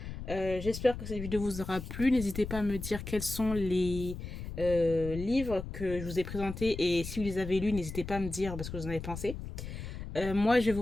J'espère que cette vidéo vous aura plu. N'hésitez pas à me dire quels sont les livres que je vous ai présentés. Et si vous les avez lus, n'hésitez pas à me dire parce que vous en avez pensé. Moi, je vais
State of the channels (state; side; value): noise; left; rumble, 8 dB below the sound